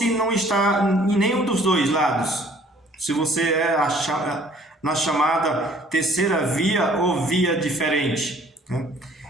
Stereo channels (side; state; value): both; normal; correlation 0.57